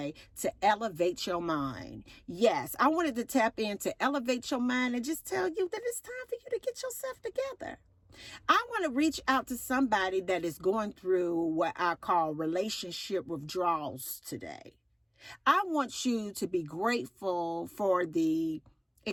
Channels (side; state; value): both; identical; correlation 1.00